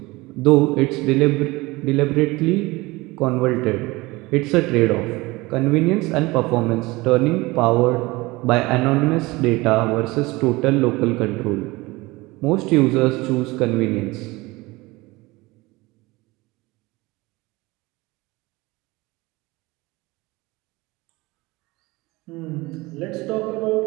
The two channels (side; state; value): left; quieter; 21.8 dB